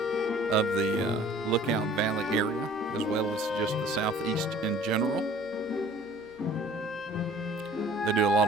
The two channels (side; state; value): right; noise; hum, 26 dB below the sound